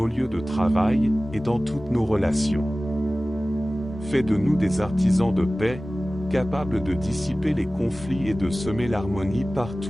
lieux de travail et dans toutes nos relations. Fais de nous des artisans de paix, capables de dissiper les conflits et de semer l'harmonie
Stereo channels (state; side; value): normal; both; correlation 0.97